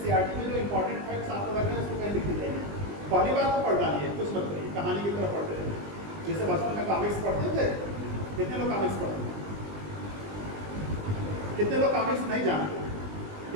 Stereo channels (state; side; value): late; left; 20 ms